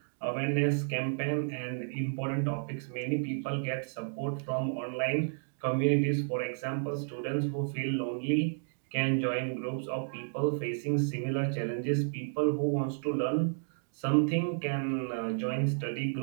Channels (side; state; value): left; silent; digital silence